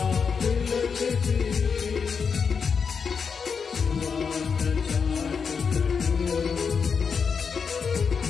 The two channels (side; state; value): right; quieter; 5.9 dB